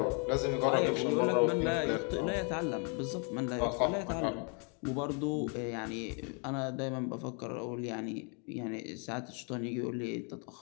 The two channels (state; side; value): quieter; right; 37.8 dB